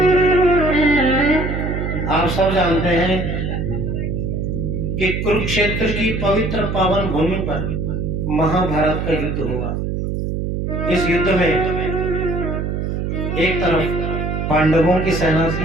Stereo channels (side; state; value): right; noise; hum, 2 dB below the sound